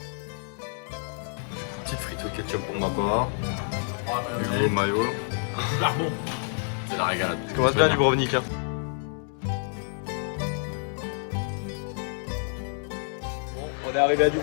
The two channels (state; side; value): silent; right; 57 dB below the other